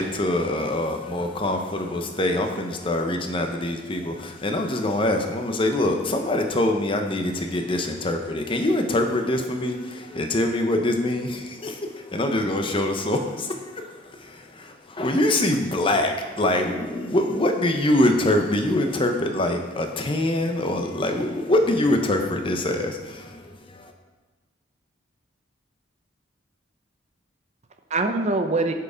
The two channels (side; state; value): both; normal; correlation 0.53